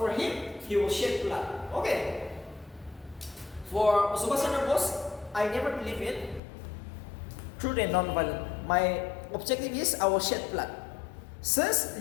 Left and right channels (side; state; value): right; drops out; at 6.4 s